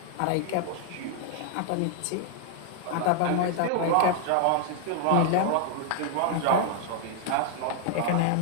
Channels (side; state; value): both; different; correlation 0.00